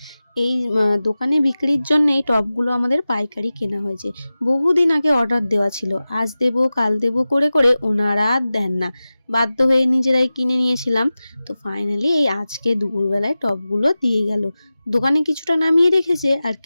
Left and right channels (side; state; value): both; inverted; correlation -0.96